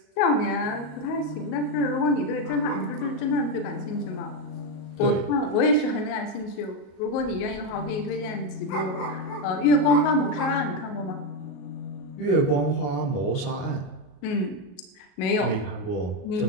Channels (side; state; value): right; late; 38 ms